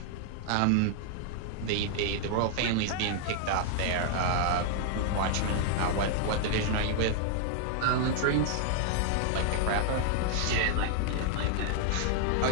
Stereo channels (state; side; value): different; both; correlation -0.01